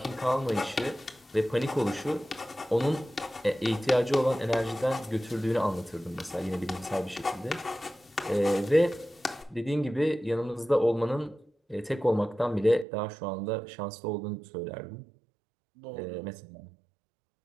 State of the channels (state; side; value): drops out; left; at 12.9 s